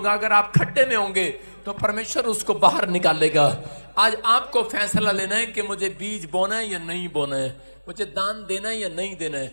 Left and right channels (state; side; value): inverted; both; correlation -1.00